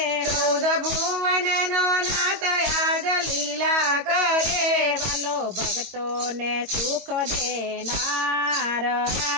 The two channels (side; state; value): left; late; 22 ms